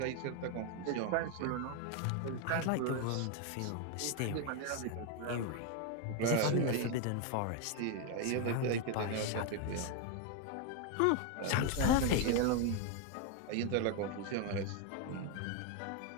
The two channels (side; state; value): both; different; correlation 0.01